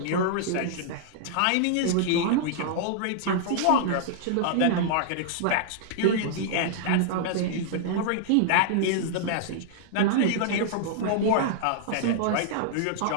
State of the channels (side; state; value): both; different; correlation -0.01